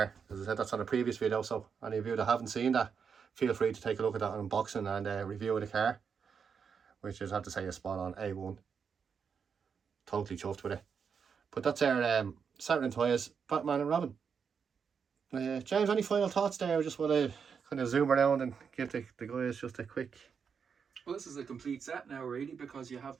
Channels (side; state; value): left; quieter; 6.4 dB